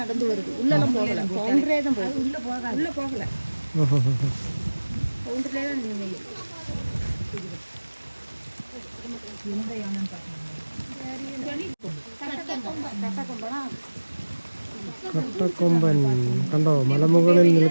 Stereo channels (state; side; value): inverted; both; correlation -1.00